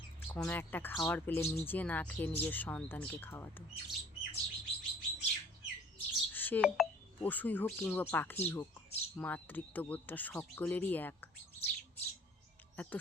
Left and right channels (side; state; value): both; normal; correlation 0.52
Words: কোনো একটা খাবার পেলে নিজে না খেয়ে নিজের সন্তানকে খাওয়াতো। সে পশুই হোক কিংবা পাখিই হোক, মাতৃত্ববোধটা সকলেরই এক। এত